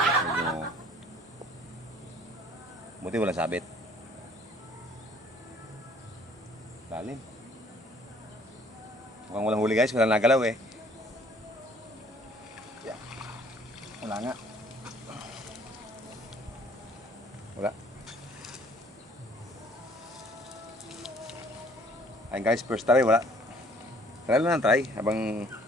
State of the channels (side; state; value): both; normal; correlation 0.57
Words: So, buti walang sabit. Lalim. Mukhang walang huli guys, walang nagalaw eh. Yeah. Wala nga. Wala. Ayun guys, first try, wala. Try lang try habang